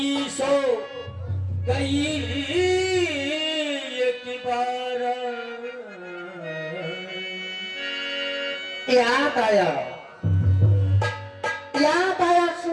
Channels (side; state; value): both; identical; correlation 1.00